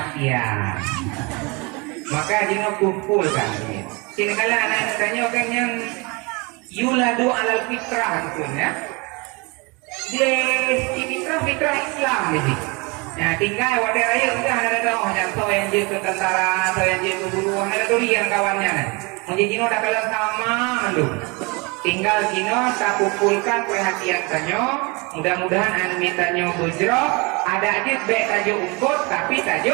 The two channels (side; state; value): left; quieter; 28.2 dB